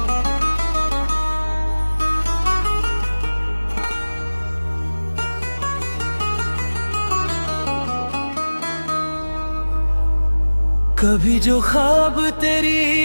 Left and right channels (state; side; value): inverted; both; correlation -1.00